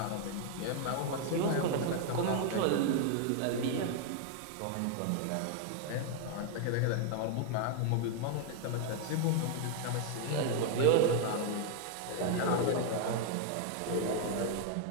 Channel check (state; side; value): different; both; correlation 0.00